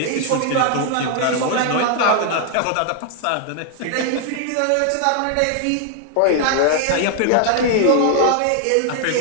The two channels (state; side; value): different; both; correlation 0.00